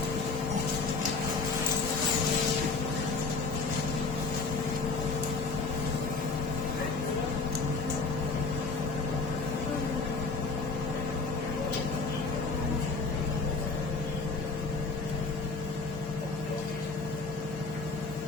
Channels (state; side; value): quieter; right; 4.0 dB